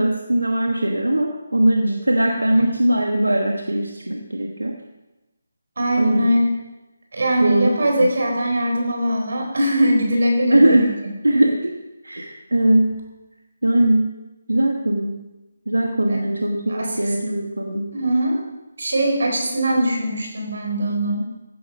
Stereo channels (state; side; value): inverted; both; correlation -0.93